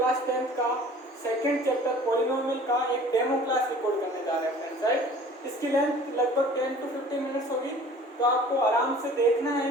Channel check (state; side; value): normal; both; correlation 0.47